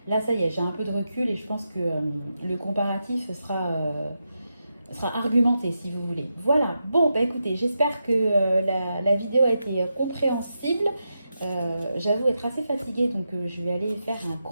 là, ça y est, j'ai un peu de recul et je pense que le comparatif sera argumenté si vous voulez. Voilà, bon, bah écoutez, j'espère que la vidéo a été compréhensible. J'avoue être assez fatiguée, donc je vais aller faire un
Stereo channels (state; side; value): inverted; both; correlation -0.87